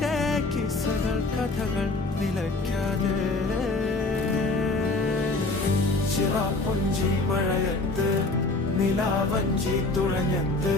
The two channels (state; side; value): quieter; right; 3.2 dB